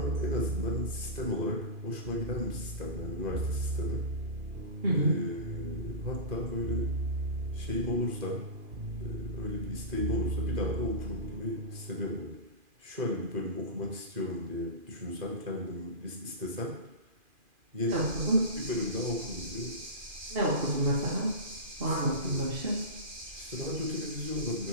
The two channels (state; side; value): late; left; 2.4 ms